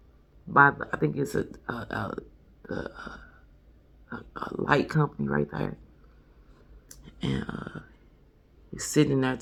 I think it's a light company right there. And he's sitting there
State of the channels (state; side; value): identical; both; correlation 1.00